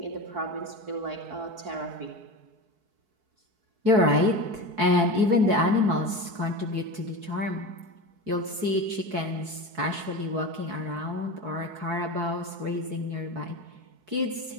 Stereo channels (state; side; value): late; left; 4.6 ms